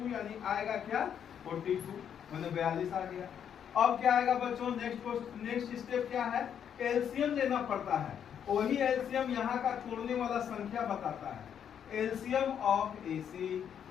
यानी आएगा क्या 42, मैंने 42 आ गया। अब क्या आएगा बच्चों, नेक्स्ट स्टेप क्या है, एलसीएम लेना पड़ता है। वही एलसीएम यहाँ का तोड़ने वाला संख्या बताता है, एलसीएम ऑफ AC,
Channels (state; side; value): quieter; right; 8.6 dB